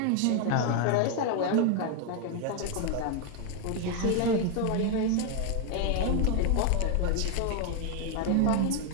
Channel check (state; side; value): different; both; correlation 0.01